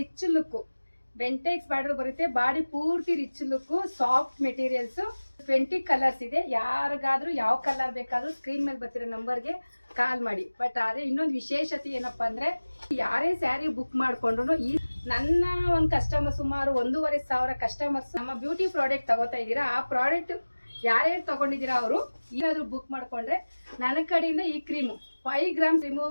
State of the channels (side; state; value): both; inverted; correlation -1.00